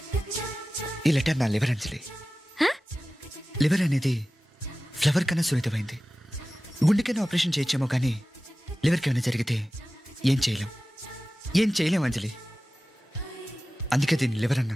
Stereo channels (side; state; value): both; normal; correlation 0.96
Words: ఈ లెటర్ నా లివర్ అంజలి. లివర్ అనేది ఫ్లవర్ కన్నా సున్నితమైంది. గుండెకైనా ఆపరేషన్ చేయొచ్చేమో కానీ లివర్కి ఏమైనా జరిగితే ఏం చేయలేం అంజలి. అందుకే దీన్ని లివర్